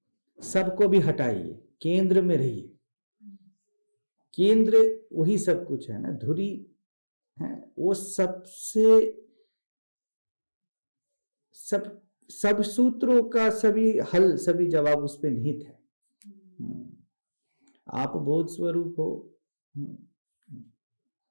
सबको भी हटाइए, केंद्र में रहिए। केंद्र वही सब कुछ है ना, धुरी है वो, सबसे सब सूत्रों का सभी हल, सभी जवाब उस पे निहित है। आप बोध स्वरूप हो,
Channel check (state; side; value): inverted; both; correlation -1.00